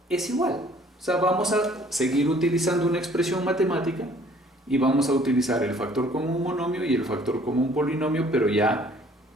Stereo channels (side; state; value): both; normal; correlation 0.57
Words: es igual. O sea, vamos a seguir utilizando una expresión matemática y vamos a utilizar el factor común monomio y el factor común polinomio, pero ya